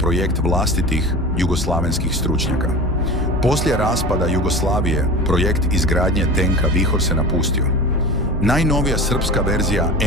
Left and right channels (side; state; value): both; normal; correlation 0.33